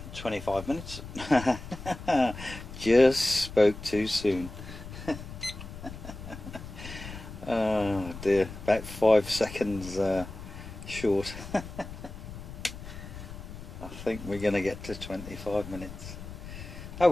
25 minutes. Just spoke too soon. Oh dear, about 5 seconds short. I think we're going to get to 25 minutes. Oh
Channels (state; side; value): noise; left; rumble, 12 dB below the sound